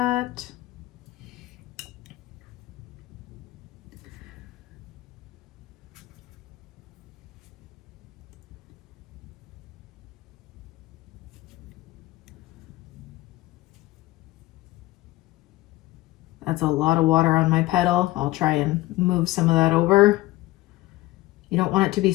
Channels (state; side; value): quieter; right; 18.1 dB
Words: That's a lot of water on my petal. I'll try and move some of that over. You don't want it to be